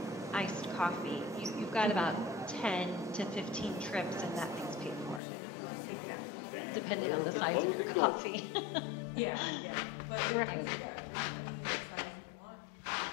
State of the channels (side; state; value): right; drops out; at 5.2 s